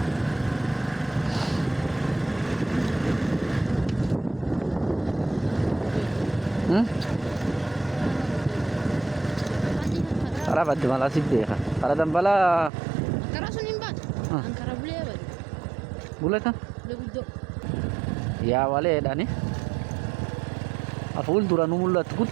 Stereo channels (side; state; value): left; drops out; at 12.7 s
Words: Para badde mala sibbeha. Para dambala Ankara sun imbat. Ankara bule bad. buleta. Le guddo. Ya wale dani. Aful duranu mullat